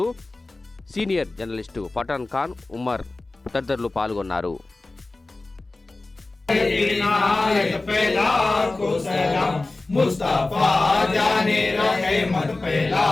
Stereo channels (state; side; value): quieter; right; 3.2 dB